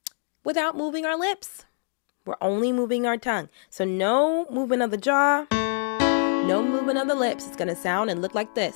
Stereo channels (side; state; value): right; silent; digital silence